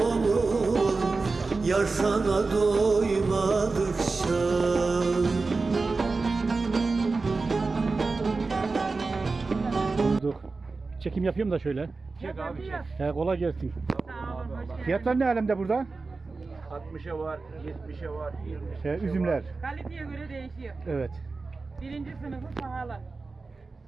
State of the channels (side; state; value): left; quieter; 3.9 dB